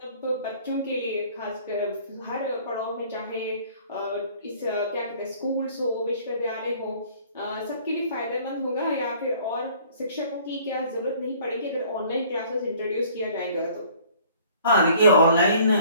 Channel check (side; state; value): both; inverted; correlation -0.54